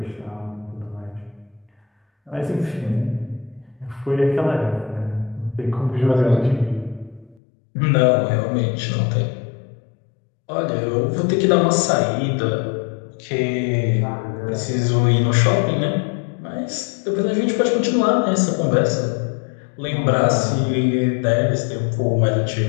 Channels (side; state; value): right; drops out; at 7.4 s